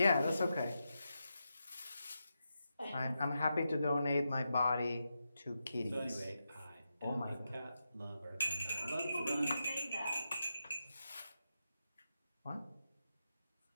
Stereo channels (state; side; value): inverted; both; correlation -0.87